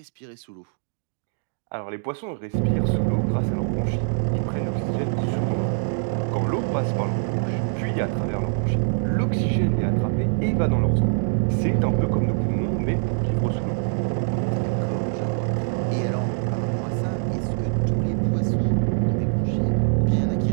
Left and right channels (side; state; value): left; silent; 63 dB below the other